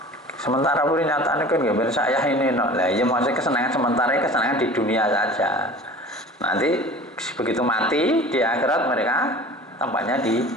Sementara pun nyatane kan nggih saya ini no. Lah ya maksudnya kesenangan sementara, kesenangan di dunia saja. Nanti begitu mati di akhirat mereka tempatnya di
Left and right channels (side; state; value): both; normal; correlation 0.41